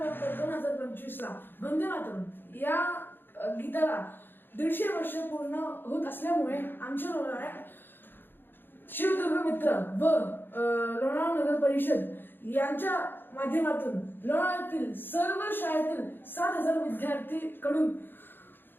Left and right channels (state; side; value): late; right; 0.098 ms